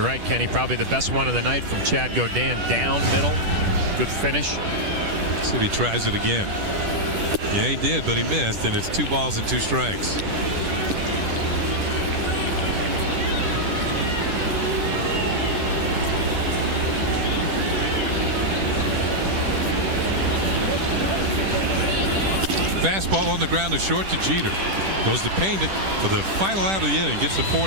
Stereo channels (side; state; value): left; late; 10 ms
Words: right, Kenny, probably the best one of the night from Chad Godin. Down middle, good finish. See if he tries it again. Yeah, he did, but he missed, and it's 2 balls and 2 strikes. Fastball on the ground to short to Jeter. Goes to Pena for the final out of the inning. Gets the